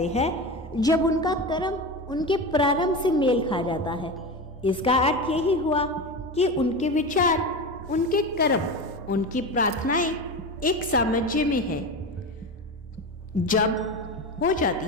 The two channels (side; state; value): both; normal; correlation 0.23